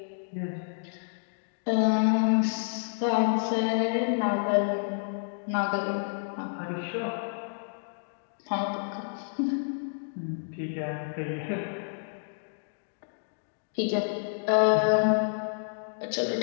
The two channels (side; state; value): right; silent; digital silence